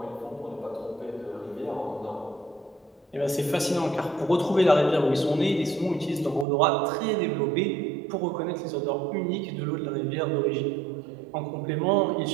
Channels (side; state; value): left; drops out; at 6.5 s